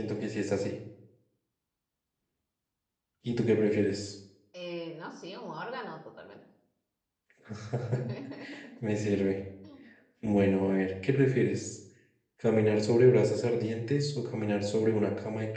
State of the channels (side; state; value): both; identical; correlation 1.00